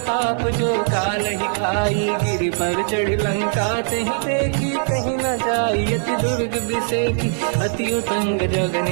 जो काल ही खाई। गिरि पर चढ़ लंका तहि देखी, कहीं न जाई अति दुर्ग बिसेकी। अति उत्तंग जग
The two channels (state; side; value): silent; left; digital silence